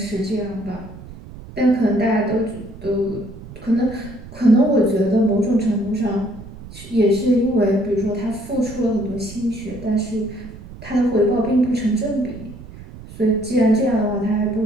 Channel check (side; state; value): right; noise; rumble, 16 dB below the sound